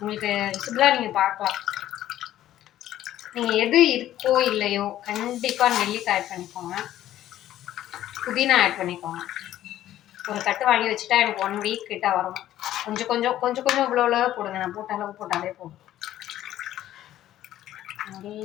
விசிபிளாக நீங்கள் பார்க்கலாம். நீங்கள் எது இருக்கோ இல்லையோ கண்டிப்பாக நெல்லிக்காய் ஆட் பண்ணிக்கோங்க, புதினா ஆட் பண்ணிக்கோங்க. ஒரு கட்டு வாங்கி வச்சுட்டா எனக்கு 1 வீக் கிட்ட வரும். கொஞ்சம் கொஞ்சம் கொஞ்சம் கொஞ்சம் இவ்வளோ போடுங்க. நான் போட்ட அளவு போட்டாலே போதும்.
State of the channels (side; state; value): right; quieter; 12.9 dB